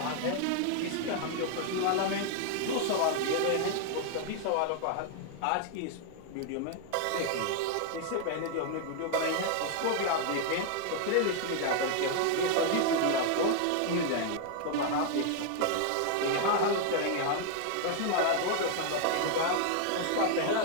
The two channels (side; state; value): both; different; correlation 0.00